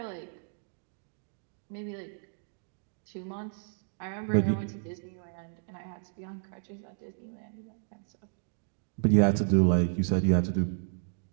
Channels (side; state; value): left; silent; digital silence